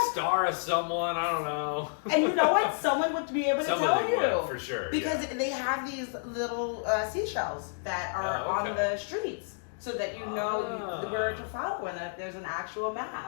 Star of someone, I don't know. And you know what? Someone would be able to tell you. Would, for sure. Because they have these little seashells that are on the streets so that you know where to follow and that there's an actual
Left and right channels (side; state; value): right; silent; digital silence